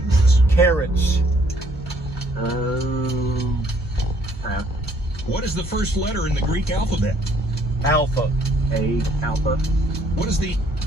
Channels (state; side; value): normal; both; correlation 0.64